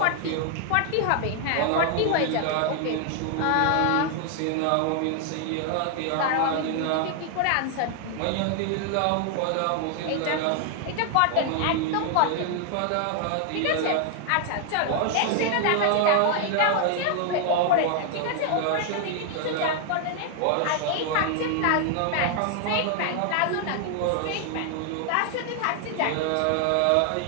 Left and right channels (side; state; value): both; different; correlation 0.00